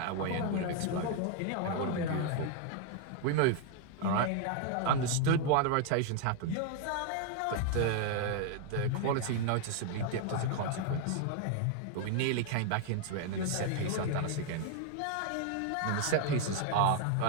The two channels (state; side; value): different; both; correlation 0.00